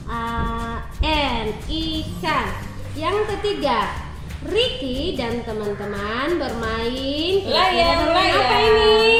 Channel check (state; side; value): identical; both; correlation 1.00